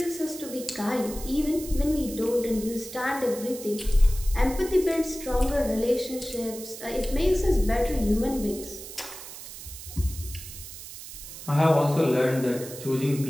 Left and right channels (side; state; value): right; noise; hiss, 13 dB below the sound